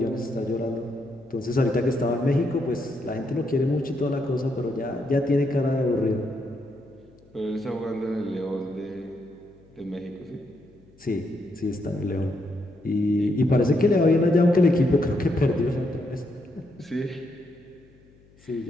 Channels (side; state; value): left; noise; hum, 28 dB below the sound